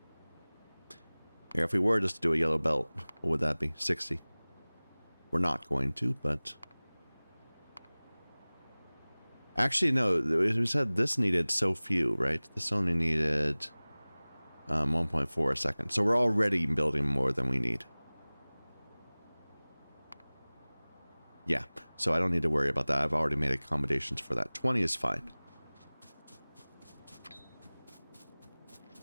Here, if we were just to do a yellow belt, what would that be? 60. We're not going to, but Actually, no, we said this needed so few, right? This only needed 1.4 a second. So we're already building more than we need. Yeah, so I don't need to worry about that. I've already made accommodations for that. 20 is fine.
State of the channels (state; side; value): inverted; both; correlation -1.00